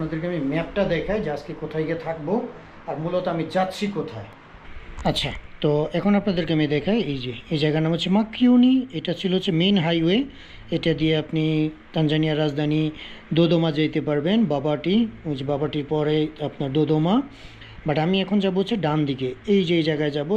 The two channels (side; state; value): both; identical; correlation 1.00